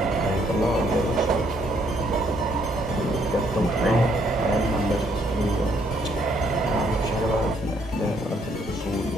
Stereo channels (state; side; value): normal; both; correlation 0.69